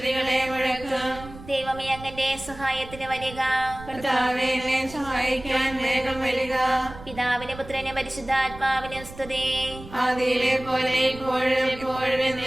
മുഴക്കും. ദൈവമേ, അങ്ങന്റെ സഹായത്തിന് വരിക. കർത്താവേ, എന്നെ സഹായിക്കാൻ വേഗം വരിക. പിതാവിനും പുത്രനും പരിശുദ്ധാത്മാവിനും സ്തുതി. ആദിയിലെ പോലെ ഇപ്പോഴും എപ്പോഴും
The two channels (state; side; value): noise; right; rumble, 16 dB below the sound